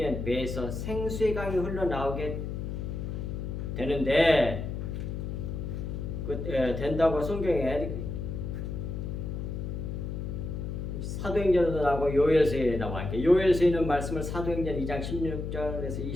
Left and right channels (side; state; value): left; noise; hum, 4 dB below the sound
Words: 배에서 생수의 강이 흘러나오게 되는데 된다고 성경에 사도행전에도 나오고 요엘서에 나와. 요엘서에 있는 말씀을 사도행전 2장 16절에서